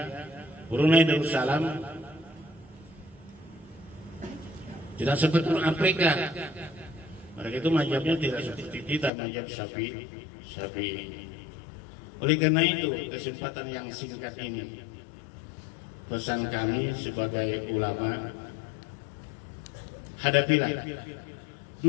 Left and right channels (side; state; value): right; drops out; at 9.1 s